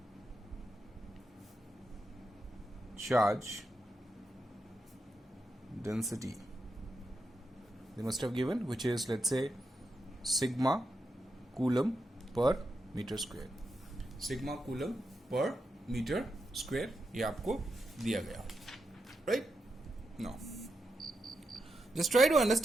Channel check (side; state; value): both; normal; correlation 0.86